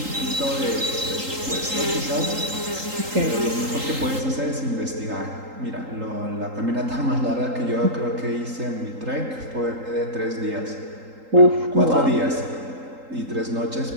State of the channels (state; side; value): late; left; 3.8 ms